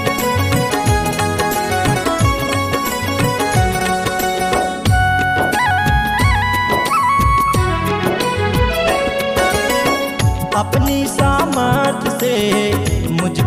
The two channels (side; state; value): both; identical; correlation 1.00